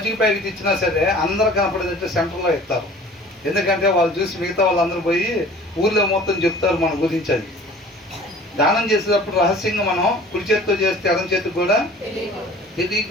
ప్యాకెట్ ఇచ్చినా సరే అందరూ కనపడేదంటే సెంటర్లో ఇస్తారు. ఎందుకంటే వాళ్ళు చూసి మిగతా వాళ్ళందరూ పోయి ఊర్లో మొత్తం చెప్తారు మన గురించి. అది దానం చేసేటప్పుడు రహస్యంగా మనం కుడి చేతితో చేస్తే ఎడం చేతికి కూడా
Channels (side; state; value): both; normal; correlation 0.47